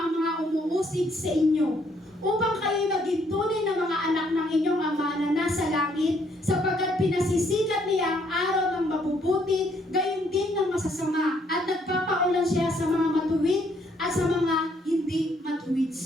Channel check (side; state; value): both; normal; correlation 0.68